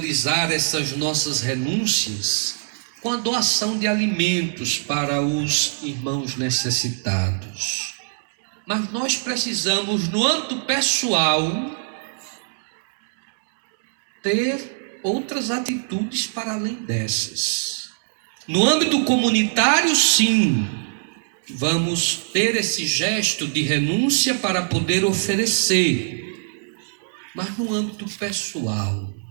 essas nossas renúncias com a doação de alimentos para os irmãos necessitados. Mas nós precisamos, no âmbito pessoal, ter outras atitudes para além dessas. No âmbito comunitário, sim, vamos ter esse gesto de renúncia para poder oferecer. Mas no âmbito pessoal,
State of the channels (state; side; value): silent; left; digital silence